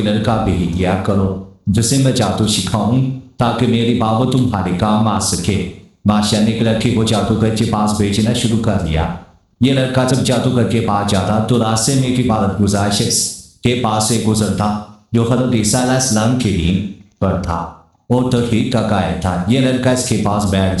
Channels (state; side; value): identical; both; correlation 1.00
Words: लड़का भेज दिया करो जिसे मैं जादू सिखाऊं ताकि मेरी बाबू तुम्हारे काम आ सके। बादशाह ने एक लड़के को जादूगर के पास भेजना शुरू कर दिया। ये लड़का जब जादूगर के पास जाता तो रास्ते में एक इबादत गुजार शख्स के पास से गुजरता जो हज़रत ईसा अलैहिस्सलाम के दिन पर था और तौहीद का कायल था। ये लड़का इसके पास बैठ